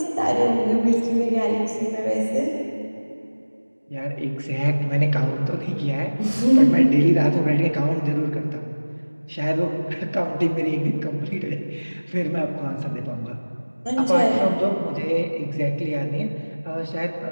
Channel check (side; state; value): both; inverted; correlation -1.00